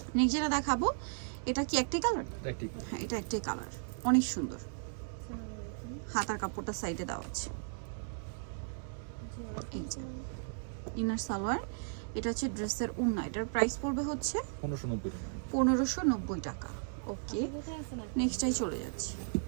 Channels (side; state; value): left; silent; digital silence